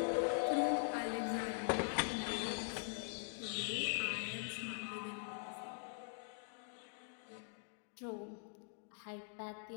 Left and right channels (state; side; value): silent; right; digital silence